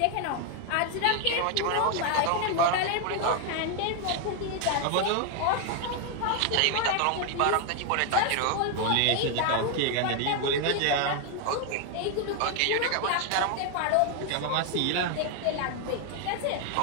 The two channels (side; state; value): both; different; correlation 0.01